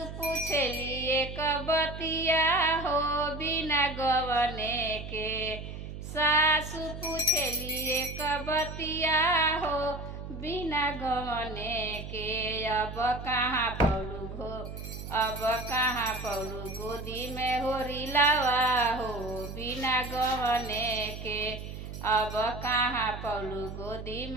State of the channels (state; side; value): noise; right; hum, 9 dB below the sound